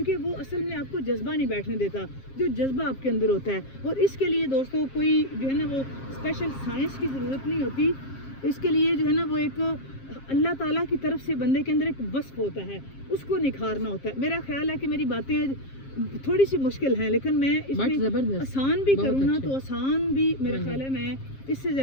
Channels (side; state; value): right; late; 7.5 ms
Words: وہ اصل میں آپ کو جذبہ نہیں بیٹھنے دیتا جو جذبہ آپ کے اندر ہوتا ہے، اور اس کے لیے دوستوں کوئی جو ہے نا وہ اسپیشل سائنس کی ضرورت نہیں ہوتی، اس کے لیے جو ہے نا وہ ایک اللہ تعالیٰ کی طرف سے بندے کے اندر ایک وصف ہوتا ہے، اس کو نکھارنا ہوتا ہے۔ میرا خیال ہے کہ میری باتیں تھوڑی سی مشکل ہیں، لیکن میں اس میں آسان بھی کروں نا تو آسان بھی میرا خیال ہے میں اس سے